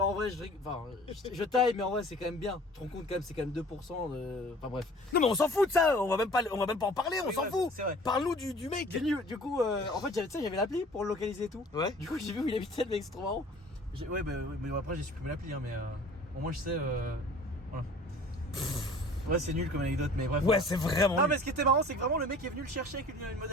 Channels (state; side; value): normal; both; correlation 0.48